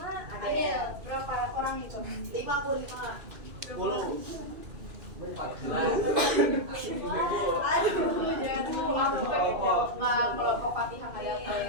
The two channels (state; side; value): late; left; 2.6 ms